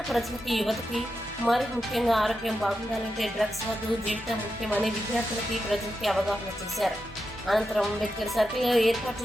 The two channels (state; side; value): normal; both; correlation 0.88